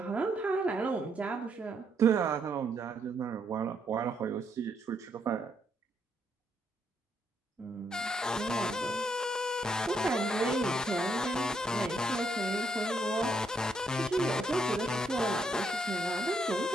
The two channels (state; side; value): normal; both; correlation 0.75